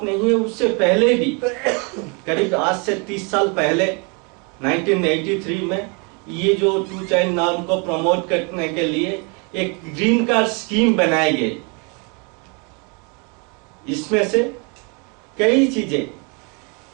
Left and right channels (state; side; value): quieter; left; 33.2 dB